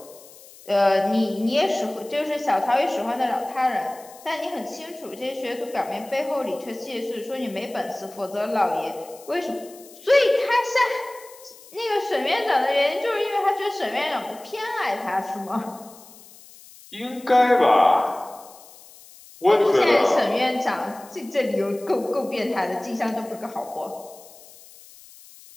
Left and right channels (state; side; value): noise; left; hiss, 21 dB below the sound